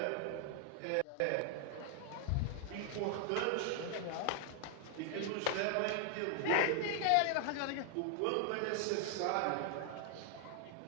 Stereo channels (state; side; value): different; both; correlation 0.00